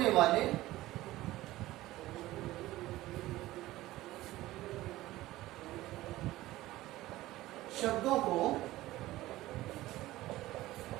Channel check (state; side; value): quieter; left; 16.8 dB